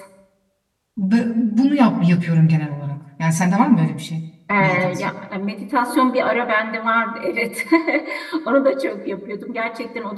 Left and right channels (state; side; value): identical; both; correlation 1.00